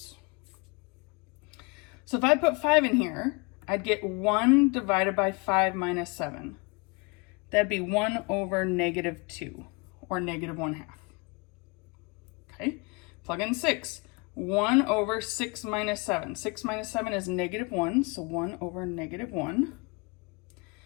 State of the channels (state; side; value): quieter; right; 29.2 dB